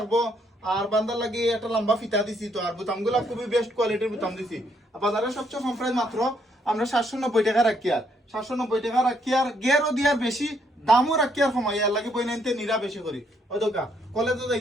আর বান্দার লাগি একটা লম্বা ফিতা দিছি তো, আর বুতাম গুলা খুবই বেস্ট কোয়ালিটির বুতাম দিছি। বাজারে সবচেয়ে কম প্রাইস মাত্র আমরা 790 টাকা রাখি, আর 790 টাকা রাখি, আর গেরও দিয়ার বেশি দামও রাখি, আর সময় আর লাগে বই নাইতে নিরা বেশি করি ওই দোকা। কলেজে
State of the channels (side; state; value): both; normal; correlation 0.71